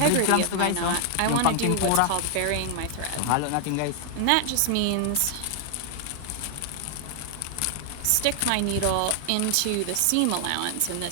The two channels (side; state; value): both; different; correlation 0.00